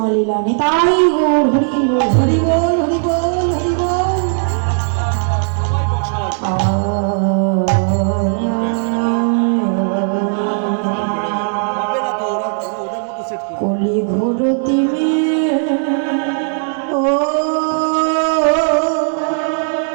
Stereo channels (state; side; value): silent; left; 69 dB below the other